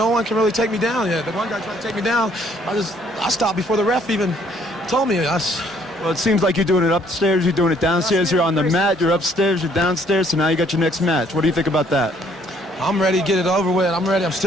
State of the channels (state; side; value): normal; both; correlation 0.63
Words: one can really take me down yet. The one guy tried to take me down. I stopped before the ref even told me. Well, it seems like you're doing it upstairs. You're doing it downstairs. You're on the mat. You're upstairs. You're downstairs. So now you got your next match. What do you think about that? I'm ready to get it over with. I'm ready. I'm